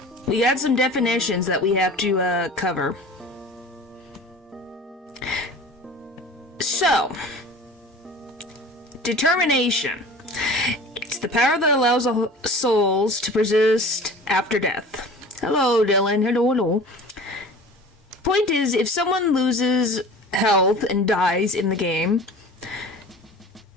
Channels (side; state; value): both; normal; correlation 0.41